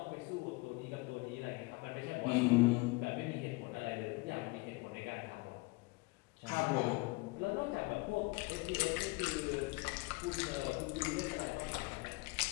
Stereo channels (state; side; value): quieter; right; 25.1 dB